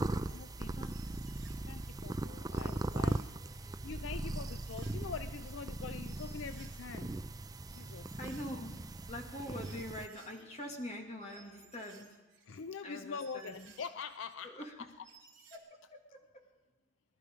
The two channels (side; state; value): both; normal; correlation 0.64